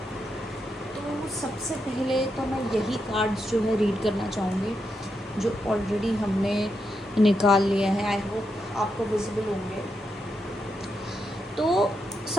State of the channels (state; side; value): normal; both; correlation 0.83